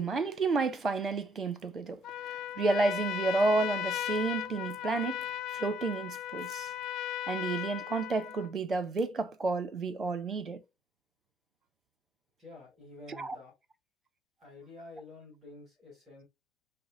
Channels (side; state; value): both; normal; correlation 0.67